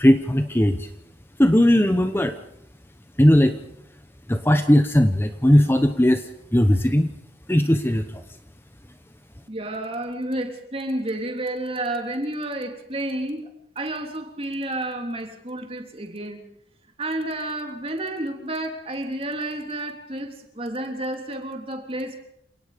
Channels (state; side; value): normal; both; correlation 0.90